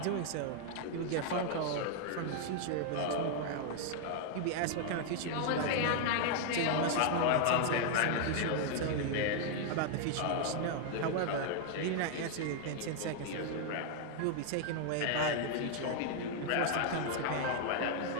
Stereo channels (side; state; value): both; different; correlation 0.00